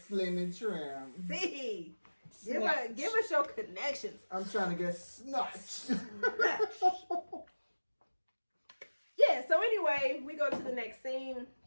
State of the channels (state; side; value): inverted; both; correlation -1.00